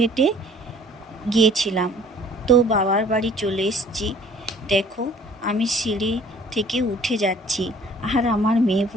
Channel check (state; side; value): normal; both; correlation 0.53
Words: গিয়েছিলাম। তো বাবার বাড়ি চলে এসেছি। দেখো, আমি সিঁড়ি থেকে উঠে যাচ্ছি, আর আমার মেয়ে